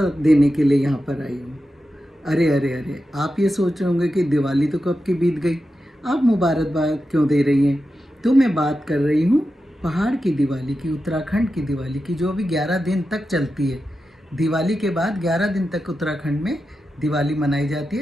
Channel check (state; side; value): normal; both; correlation 0.90